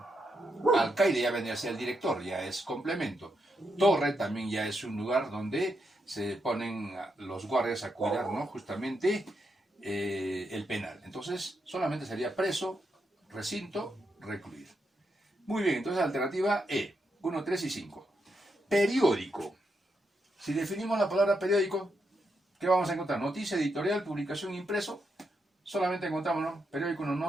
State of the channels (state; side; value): normal; both; correlation 0.82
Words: ¿no? Alcaide ya vendría a ser el director, ya es complemento. Torre también ya es un lugar donde se ponen los guardias a cuidar, ¿no?, justamente el penal. Entonces, solamente sería preso, recinto, recluir. Muy bien, entonces alternativa E, 1, 3 y 5. Periódico. Si definimos la palabra periódico, ¿qué vamos a encontrar? Noticia, editorial, publicación, impreso. Solamente encontramos, ¿no? Periódico, no,